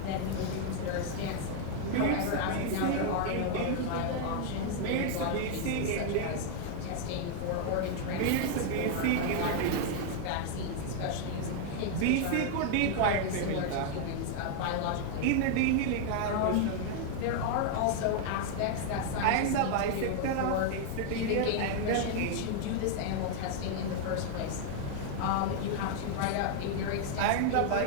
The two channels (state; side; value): different; both; correlation 0.00